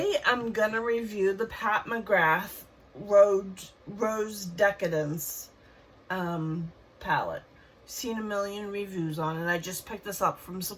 I'm gonna review the Pat McGrath Rose Decadence palette. Seen a million reviews on it. I just picked this up from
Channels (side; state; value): both; identical; correlation 1.00